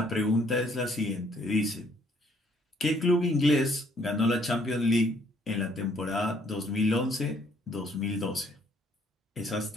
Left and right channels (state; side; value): normal; both; correlation 0.65